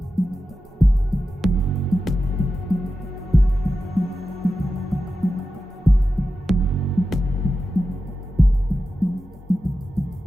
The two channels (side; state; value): both; normal; correlation 0.92